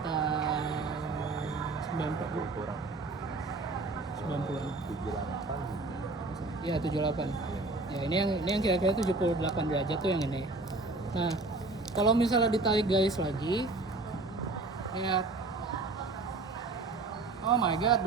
90 kurang 90. 78. Iya, 78. Ya, ini yang kira-kira 78 derajat tuh yang ini. Nah, kalau misalnya ditarik garis lagi, Lihat. Oh my god,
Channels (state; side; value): quieter; left; 3.3 dB